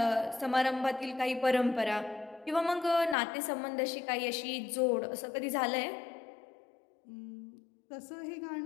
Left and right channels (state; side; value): drops out; right; at 3.2 s